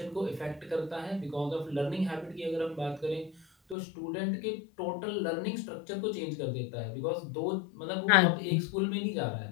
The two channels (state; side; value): drops out; right; at 3.8 s